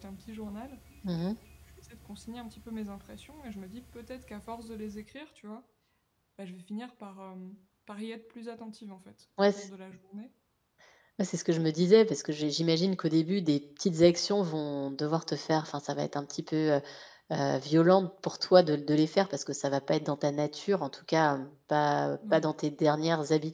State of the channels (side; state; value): both; identical; correlation 1.00